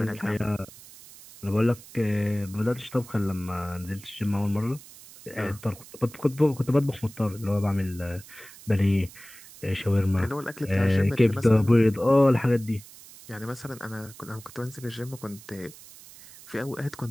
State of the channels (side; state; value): right; noise; hiss, 19 dB below the sound